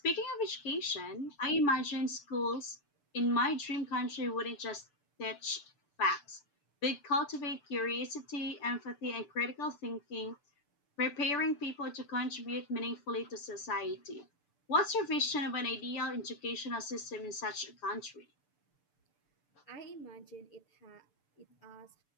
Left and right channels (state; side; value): late; right; 6.9 ms